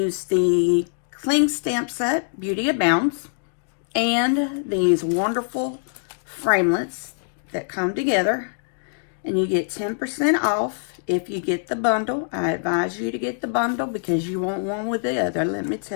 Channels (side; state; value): right; silent; digital silence